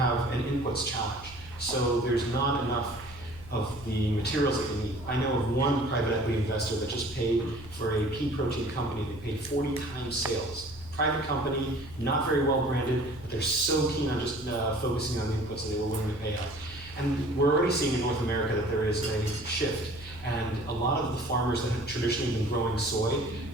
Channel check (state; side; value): noise; right; hum, 19 dB below the sound